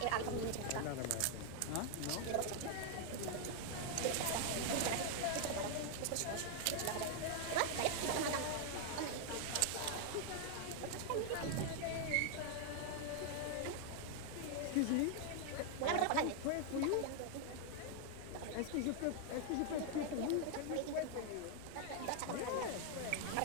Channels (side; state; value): both; different; correlation 0.00